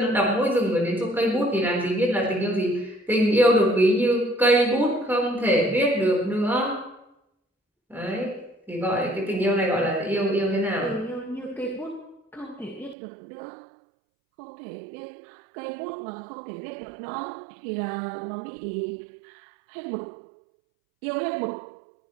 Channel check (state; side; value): drops out; left; at 13.0 s